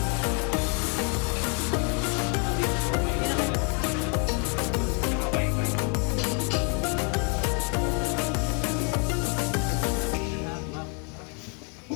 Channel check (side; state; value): right; quieter; 37.8 dB